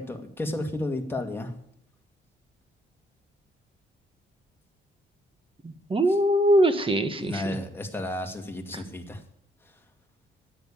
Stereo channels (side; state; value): both; normal; correlation 0.71